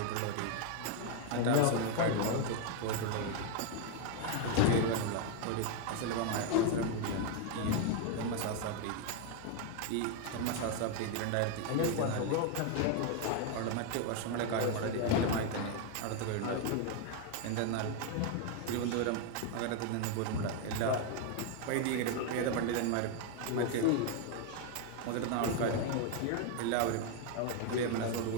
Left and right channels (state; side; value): different; both; correlation 0.01